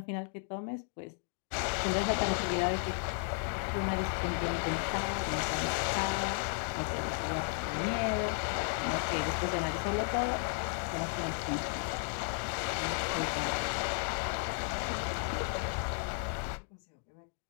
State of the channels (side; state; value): right; silent; 55 dB below the other